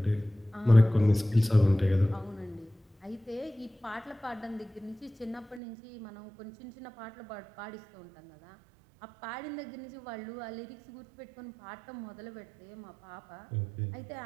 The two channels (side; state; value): left; drops out; at 5.6 s